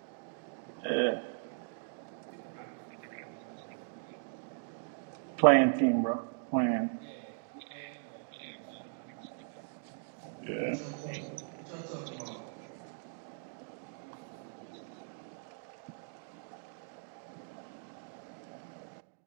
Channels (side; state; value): left; silent; digital silence